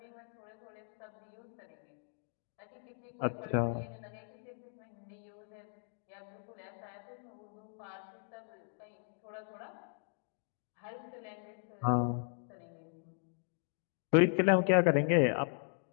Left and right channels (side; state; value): right; silent; 53 dB below the other